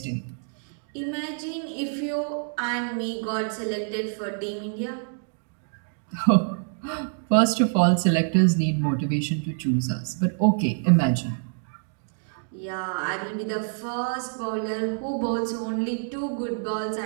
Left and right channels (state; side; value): silent; left; digital silence